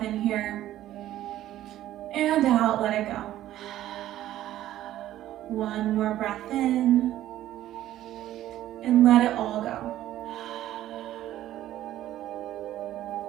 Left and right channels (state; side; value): quieter; left; 13.3 dB